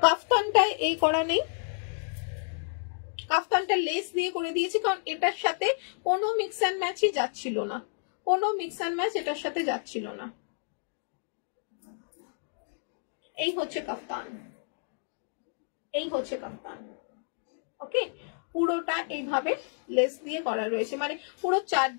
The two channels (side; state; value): right; silent; digital silence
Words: কাফতানটায় এই করা নেই, কাফতানটা লেস দিয়ে করে দিয়েছি কারণ এটার সাথে কোনো মিক্স অ্যান্ড ম্যাচই যাচ্ছিল না, কোনো মিক্স অ্যান্ড ম্যাচ এটার সাথে যাচ্ছিল না। এই হচ্ছে কাফতান, এই হচ্ছে কাফতান, ওকে। পুরোটা এইভাবে লেস দিয়ে করা রয়েছে, মানে পুরো